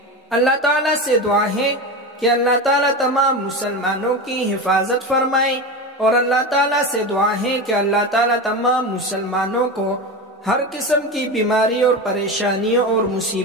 اللہ تعالیٰ سے دعا ہے کہ اللہ تعالیٰ تمام مسلمانوں کی حفاظت فرمائے، اور اللہ تعالیٰ سے دعا ہے کہ اللہ تعالیٰ تمام مسلمانوں کو ہر قسم کی بیماری اور پریشانیوں اور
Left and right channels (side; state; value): both; normal; correlation 0.23